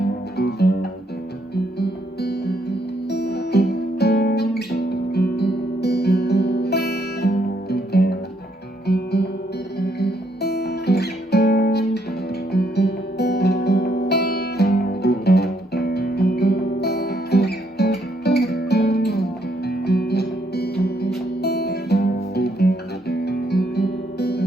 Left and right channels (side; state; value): both; normal; correlation 0.73